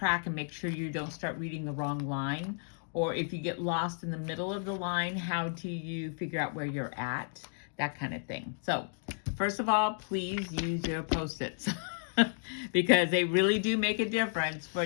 and make sure you don't start reading the wrong line, or if you get lost in the middle of the line, how do you figure out where you're at, that kind of thing. So first of all, please use your Post-its because they really do make a difference for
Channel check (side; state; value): right; silent; digital silence